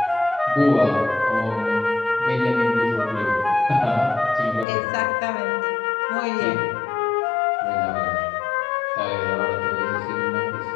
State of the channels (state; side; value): drops out; right; at 4.7 s